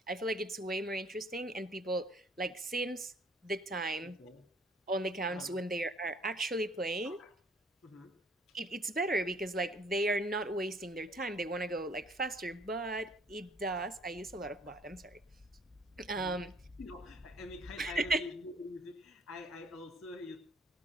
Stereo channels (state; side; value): normal; both; correlation 0.58